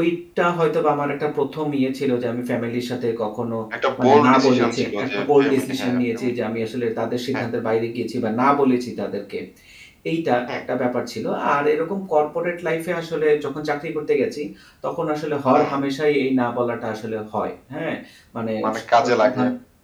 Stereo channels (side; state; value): both; identical; correlation 1.00